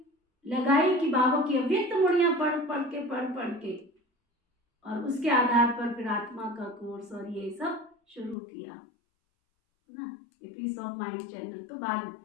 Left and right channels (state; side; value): drops out; right; at 8.3 s